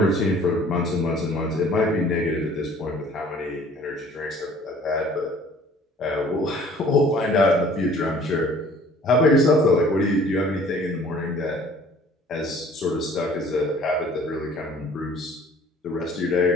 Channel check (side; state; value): both; normal; correlation 0.53